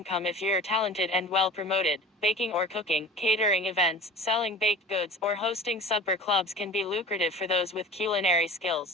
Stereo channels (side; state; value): both; normal; correlation 0.39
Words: if you're talented and well promoted. Baking or cooking, catering events, selling baked goods, or hosting supper clubs can be lucrative for those with culinary